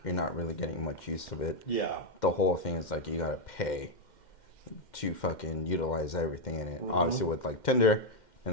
you're not really getting much use of it. Yeah. The whole thing is like you gotta pay to fucking utilize everything in it. Mm-hmm. Obviously, with like Tinder,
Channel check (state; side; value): late; right; 2.1 ms